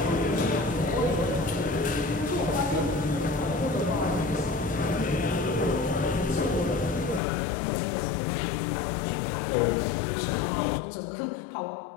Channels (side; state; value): right; drops out; at 7.2 s